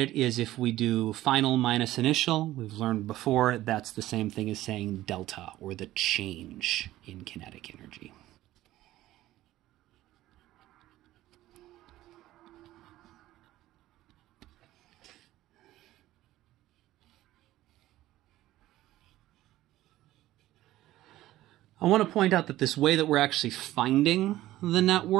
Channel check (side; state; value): left; quieter; 15.3 dB